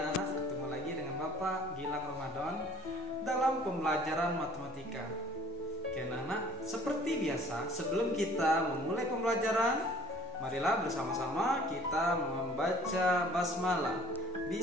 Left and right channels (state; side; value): normal; both; correlation 0.52